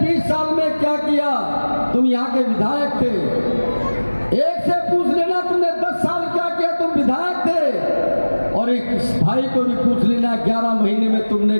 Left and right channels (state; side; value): inverted; both; correlation -1.00